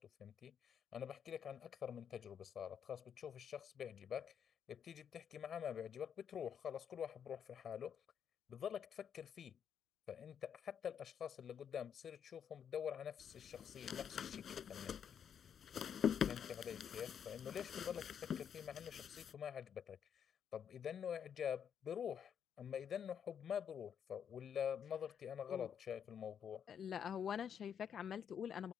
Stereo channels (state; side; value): quieter; right; 8.1 dB